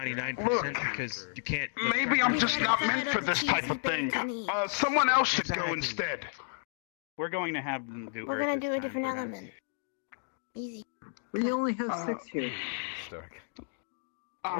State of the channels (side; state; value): right; silent; digital silence